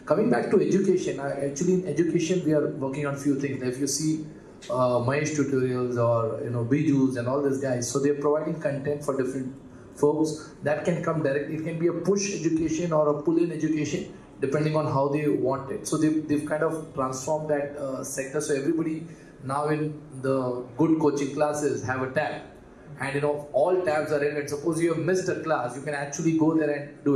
Coming back to education, actually in education we are working on few things. If you see Mahesh tutorials or Bijus and all these guys, so they are providing content for different folks that can come directly. It can be a push education or a pull-in education, depending on how they want it. So they've kind of transformed that sector. So everybody now in the good coaching classes have a tab, and all tabs are relevant. Suppose you have missed a class, you can actually go there and do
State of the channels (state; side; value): identical; both; correlation 1.00